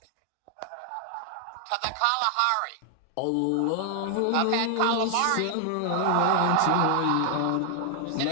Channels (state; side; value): different; both; correlation 0.00